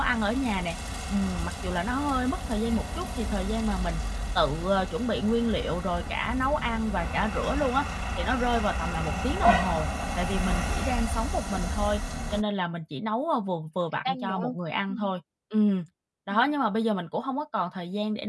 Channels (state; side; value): identical; both; correlation 1.00